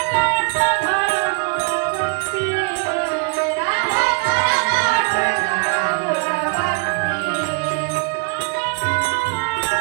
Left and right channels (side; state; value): left; quieter; 34.5 dB